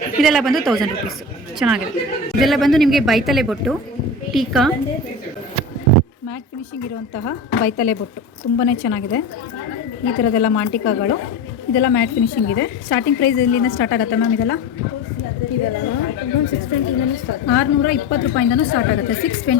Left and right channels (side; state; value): right; quieter; 3.1 dB